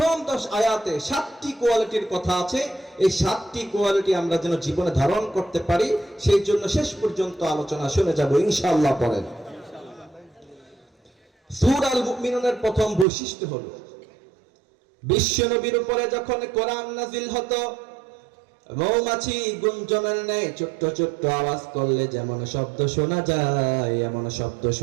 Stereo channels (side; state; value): left; drops out; at 13.1 s